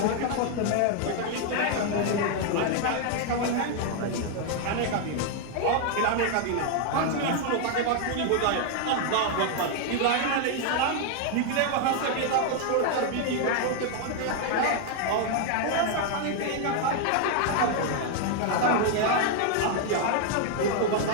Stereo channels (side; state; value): both; different; correlation 0.00